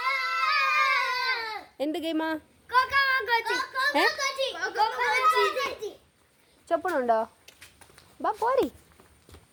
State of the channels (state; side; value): identical; both; correlation 1.00